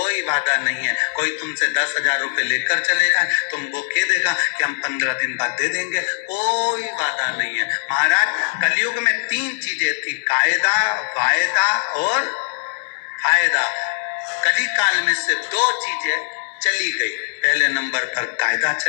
वादा नहीं है। कोई तुमसे 10,000 रुपए लेकर चले जाए, तुमको कह देगा कि हम 15 दिन बाद दे देंगे, कोई वादा नहीं है महाराज। कलयुग में 3 चीजें थी, कायदा, वायदा और फायदा। कलिकाल में से 2 चीजें चली गई। पहले नंबर पर कायदा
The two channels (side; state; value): right; silent; 65 dB below the other